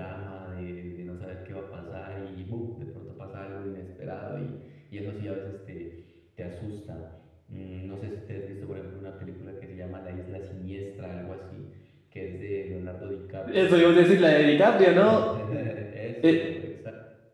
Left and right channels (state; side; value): identical; both; correlation 1.00